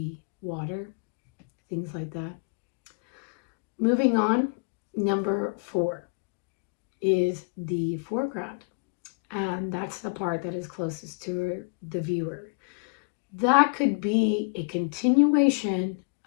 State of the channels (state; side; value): quieter; right; 36.3 dB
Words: water, things like that. Moving on, number 4 is the foreground, and that's the part that is closest to the viewer. That could be a continuation